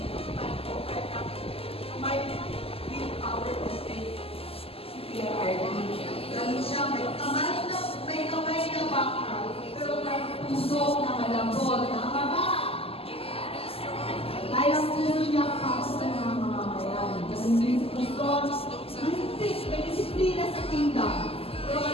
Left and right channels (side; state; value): right; late; 0.28 ms